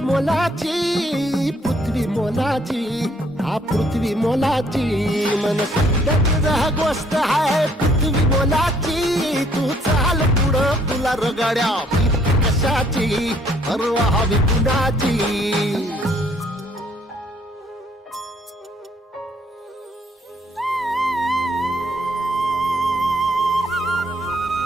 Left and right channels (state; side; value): normal; both; correlation 0.65